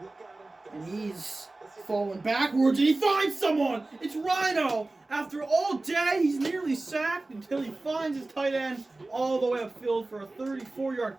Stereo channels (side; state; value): left; quieter; 3.1 dB